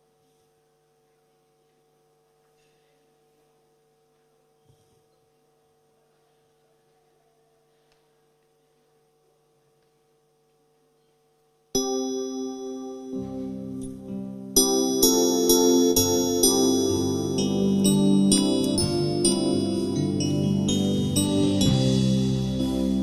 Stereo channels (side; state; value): both; identical; correlation 1.00